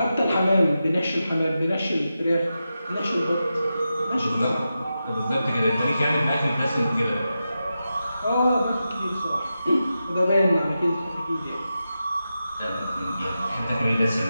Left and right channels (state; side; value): inverted; both; correlation -0.90